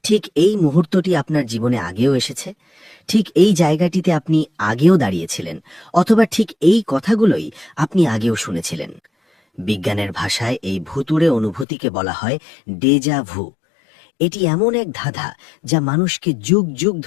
ঠিক এই মুহূর্তটি আপনার জীবনে আগেও এসেছে, ঠিক এই জায়গাটিতে আপনি আগেও দাঁড়িয়েছিলেন, অথবা ঠিক এই কথাগুলোই আপনি আগেও শুনেছিলেন। বিজ্ঞানের ভাষায় এই ভুতুড়ে অনুভূতিকে বলা হয় ডেজা ভু। এটি এমন এক ধাঁধা যা মানুষকে যুগ যুগ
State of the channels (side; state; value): right; drops out; at 11.7 s